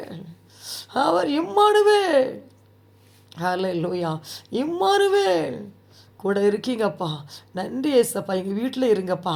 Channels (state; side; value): identical; both; correlation 1.00